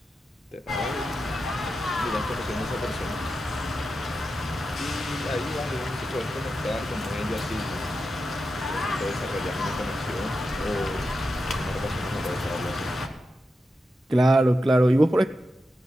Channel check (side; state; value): both; normal; correlation 0.89